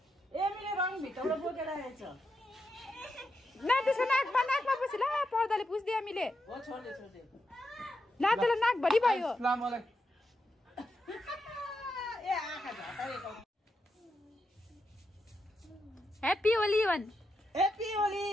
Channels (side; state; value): both; normal; correlation 0.84